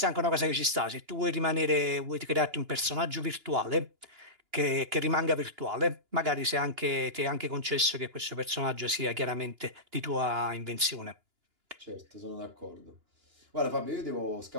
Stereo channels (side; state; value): left; late; 2.9 ms